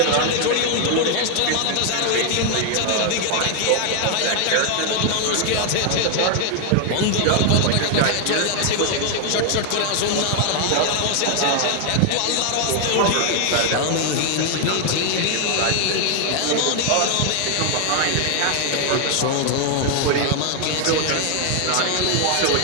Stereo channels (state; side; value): different; both; correlation 0.00